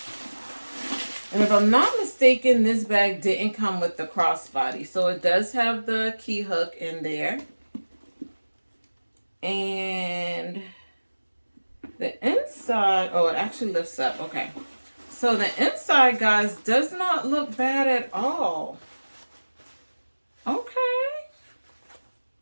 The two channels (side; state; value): both; inverted; correlation -1.00